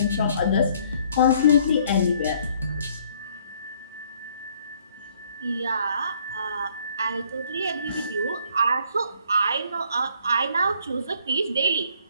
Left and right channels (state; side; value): inverted; both; correlation -0.62